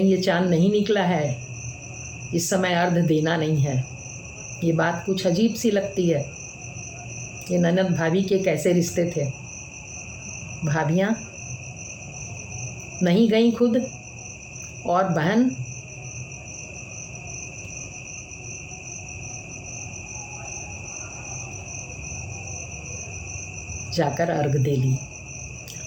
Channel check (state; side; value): identical; both; correlation 1.00